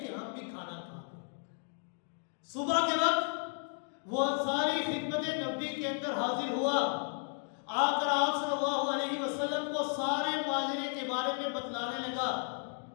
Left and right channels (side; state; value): right; silent; 55 dB below the other